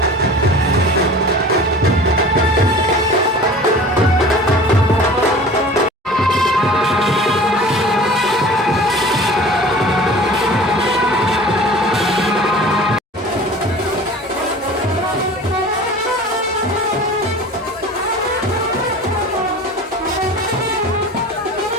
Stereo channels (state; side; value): normal; both; correlation 0.41